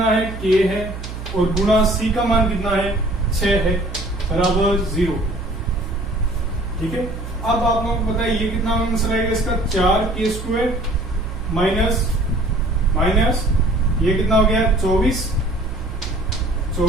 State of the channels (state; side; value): noise; right; hum, 10 dB below the sound